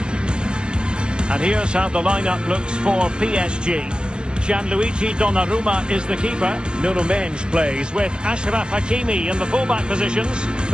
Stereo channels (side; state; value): left; late; 0.048 ms